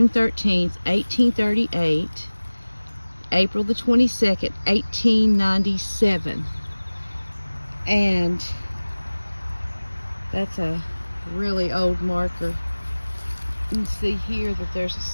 13th, 1838, April the 22nd, 1897. And that's a really old marker. You can see here that there's a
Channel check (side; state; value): both; inverted; correlation -1.00